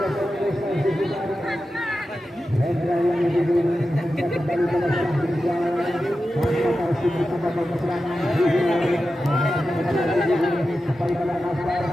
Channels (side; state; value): both; normal; correlation 0.92